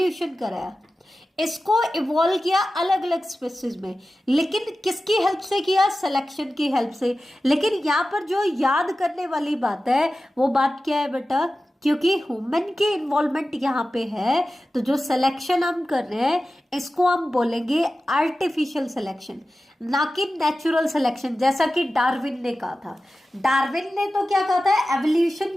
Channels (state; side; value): normal; both; correlation 0.94